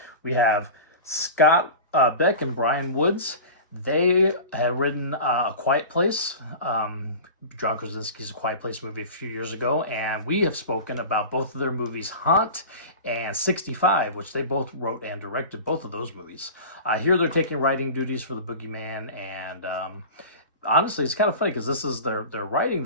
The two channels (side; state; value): both; inverted; correlation -0.34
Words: we have Scott Beck and Brian Woods. They had written A Quiet Place, John Krasinski's A Quiet Place movie a few years ago, and we have spoken about both of their movies, Haunt and 65, which they both wrote and directed both of those movies. Here they're taking writing duties for The Boogeyman, and honestly, it's kind of funny because they're writing